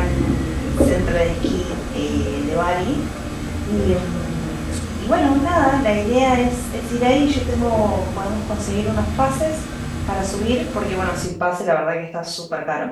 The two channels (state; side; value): identical; both; correlation 1.00